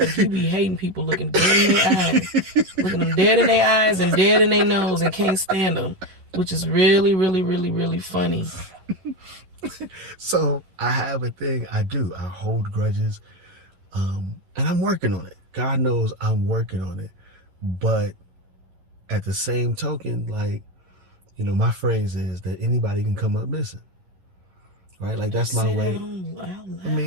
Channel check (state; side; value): late; left; 11 ms